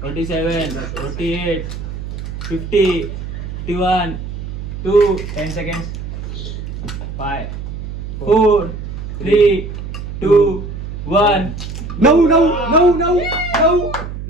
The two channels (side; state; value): right; noise; hum, 8 dB below the sound